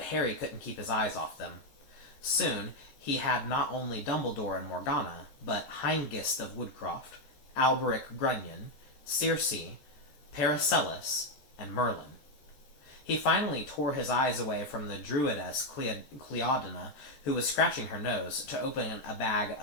Harry couldn't keep his eyes off them. Soon, he had not only Dumbledore and Morgana, but Hengist of Woodcroft, Alberic Grunion, Circe, Paracelsus, and Merlin. He finally tore his eyes away from the druidess Cleodina, who was scratching her nose, to open a bag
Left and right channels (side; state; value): right; late; 14 ms